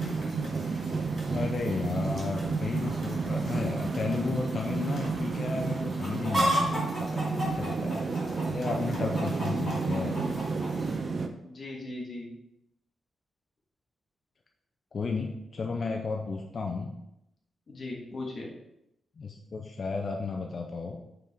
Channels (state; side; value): normal; both; correlation 0.83